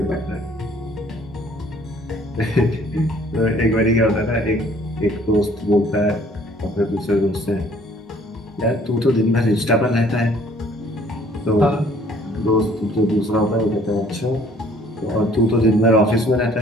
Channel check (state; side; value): normal; both; correlation 0.58